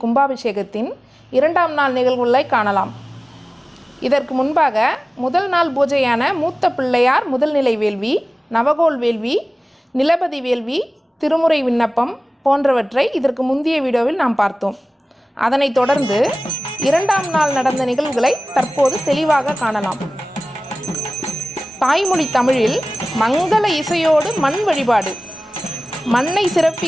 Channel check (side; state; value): both; normal; correlation 0.97